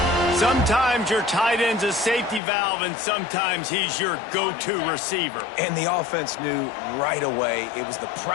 Sometimes your tight end's a safety valve, and sometimes he's your go-to receiver. And the offense knew right away it was the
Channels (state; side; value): drops out; right; at 2.4 s